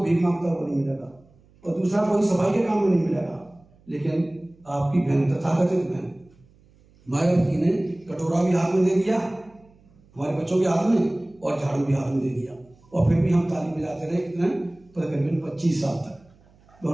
भीख मांगता हुआ नहीं मिलेगा और दूसरा कोई सफाई के काम में नहीं मिलेगा। लेकिन आपकी बहन, तथाकथित बहन मायावती ने कटोरा भी हाथ में दे दिया हमारे बच्चों के हाथ में और झाड़ू भी हाथ में दे दिया, और फिर भी हम ताली बजाते रहे कितने, तकरीबन 25 साल तक। तो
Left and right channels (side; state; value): right; noise; hum, 30 dB below the sound